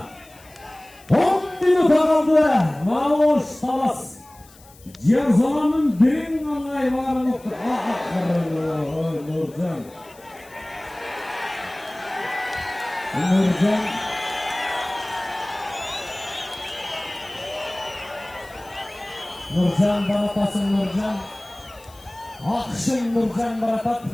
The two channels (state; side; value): noise; left; hiss, 25 dB below the sound